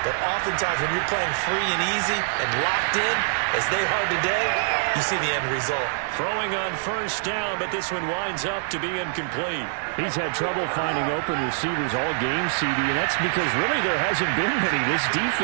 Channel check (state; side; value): silent; left; 62 dB below the other